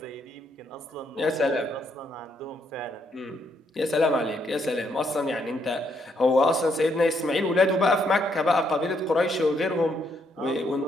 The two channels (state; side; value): normal; both; correlation 0.74